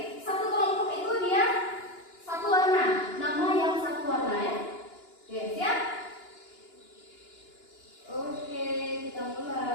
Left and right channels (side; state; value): right; late; 2.9 ms